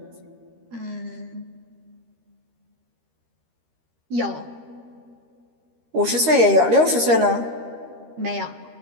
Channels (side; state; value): left; late; 13 ms